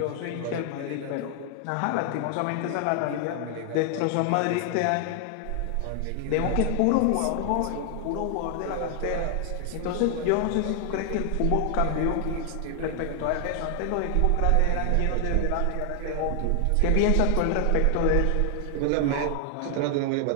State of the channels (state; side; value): different; both; correlation 0.00